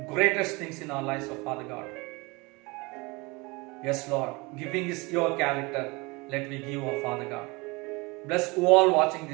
greatest things in our lives, oh Father God. Yes, Lord, giving is your character. Let me give, oh Father God. Bless all watching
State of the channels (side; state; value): left; quieter; 25.6 dB